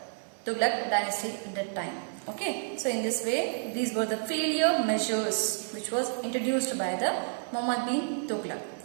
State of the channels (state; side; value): silent; left; digital silence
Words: Tughlaq dynasty at that time. Okay. So in this way, these were the failure measures which was introduced by the Muhammad bin Tughlaq.